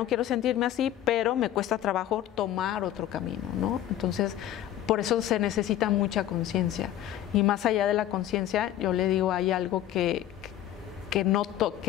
quiero sentirme así, pero me cuesta trabajo tomar otro camino, ¿no? Entonces, por eso se necesita mucha conciencia. Y más allá de la conciencia, yo le digo, hay algo que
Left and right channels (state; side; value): quieter; right; 12.2 dB